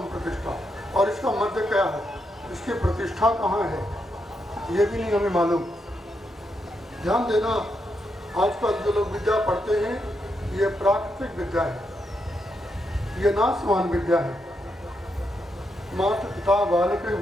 और इसका मध्य क्या है, इसकी प्रतिष्ठा कहाँ है ये भी नहीं हमें मालूम। ध्यान देना, आजकल जो लोग विद्या पढ़ते हैं ये प्राकृतिक विद्या है, ये नाशवान विद्या है। माता पिता बालक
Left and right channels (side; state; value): both; normal; correlation 0.82